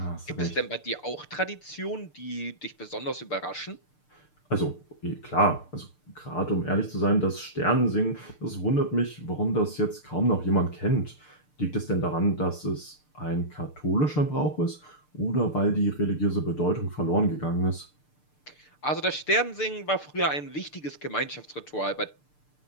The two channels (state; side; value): late; right; 6.7 ms